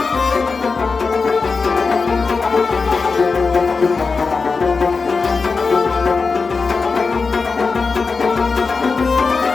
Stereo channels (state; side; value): quieter; right; 4.6 dB